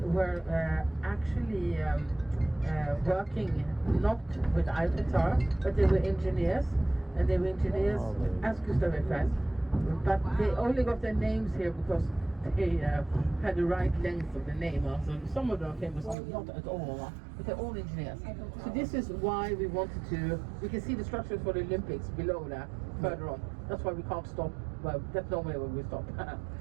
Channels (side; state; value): left; drops out; at 16.2 s